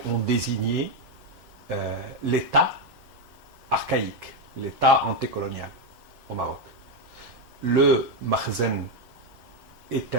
on désignait l'État archaïque, l'État antécolonial au Maroc. Le makhzen est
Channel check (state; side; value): late; left; 3.5 ms